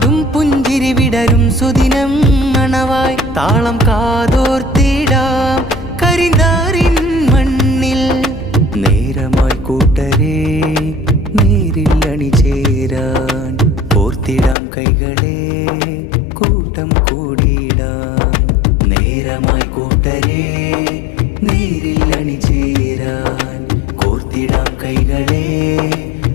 പുഞ്ചിരി വിടരും സുദിനം മണവായി. താളം കാതോർത്തിടാം കരിന്താറിൻ മണ്ണിൽ. നേരമായി കൂട്ടരേ നേരിൽ അണിചേരാൻ കോർത്തിടാം കൈകളെ കൂട്ടം കൂടിയിടാൻ. നേരമായി കൂട്ടരേ നേരിൽ അണിചേരാൻ കോർത്തിടാം കൈകളെ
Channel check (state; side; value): drops out; right; at 14.6 s